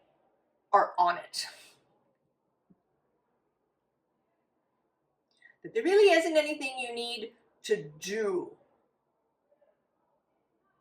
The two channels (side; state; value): both; identical; correlation 1.00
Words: are on it. That there really isn't anything you need to do.